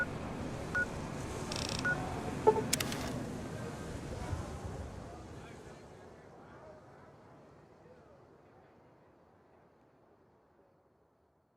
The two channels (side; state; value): both; identical; correlation 1.00